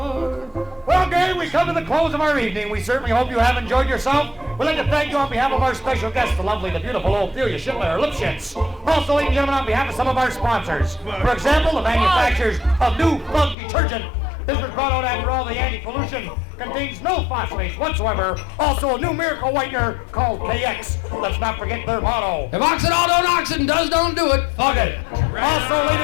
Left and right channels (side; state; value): right; drops out; at 13.6 s